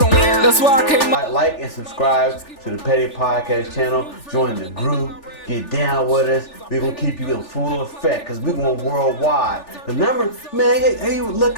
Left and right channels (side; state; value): right; late; 3.4 ms